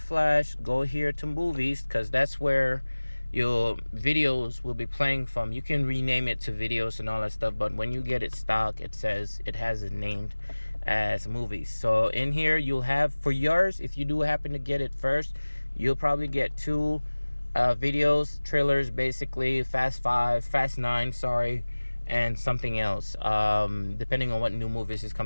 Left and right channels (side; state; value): both; inverted; correlation -1.00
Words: go here to movies, because that's where your videos will be playing from. You can rename it to videos and all that stuff, but when you get it stock, it says it has it named as movies. So in here you'll have, for yours, if you do happen to get it first, you'll probably get 2 videos, trailers, basically Fast 5, Fast 9, sorry, and something else, depending on what new movies is